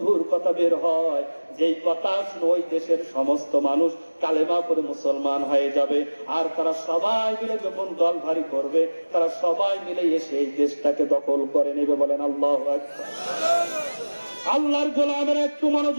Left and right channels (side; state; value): both; inverted; correlation -1.00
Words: কথা বের হয়, যেই কথা শুনে ওই দেশের সমস্ত মানুষ কালেমা করে মুসলমান হয়ে যাবে। আর তারা সবাই মিলে যখন দল ভারী করবে, তারা সবাই মিলে এসে এই দেশটাকে দখল করে নেবে। বলেন আল্লাহু আকবার। আল্লাহর গোলামের একটু